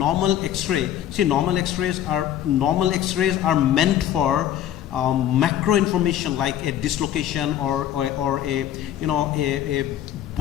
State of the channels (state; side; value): quieter; right; 11.1 dB